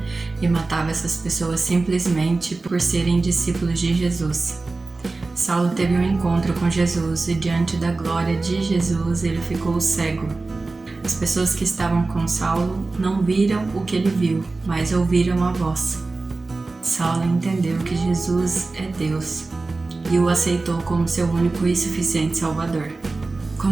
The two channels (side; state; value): left; quieter; 3.5 dB